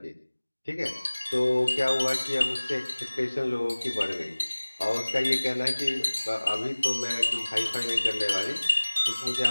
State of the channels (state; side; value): inverted; both; correlation -1.00